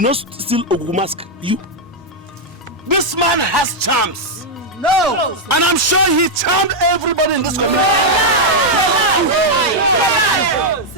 not steal Ogugu mask. You. This man has charms. No! And I'm sure he charmed everybody in this community.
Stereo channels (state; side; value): normal; both; correlation -0.02